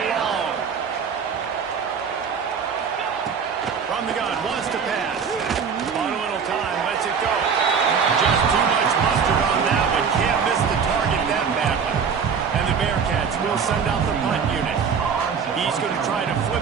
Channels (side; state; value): left; quieter; 6.4 dB